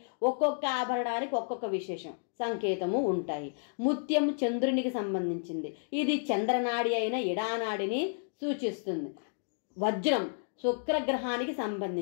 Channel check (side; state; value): right; silent; digital silence